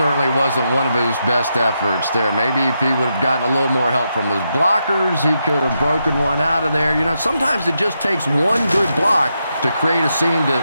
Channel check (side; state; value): both; inverted; correlation -0.83